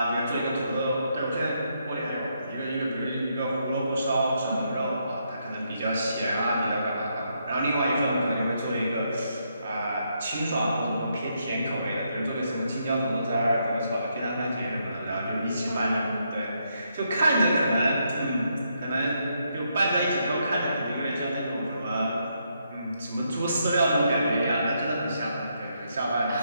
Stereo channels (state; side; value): inverted; both; correlation -0.78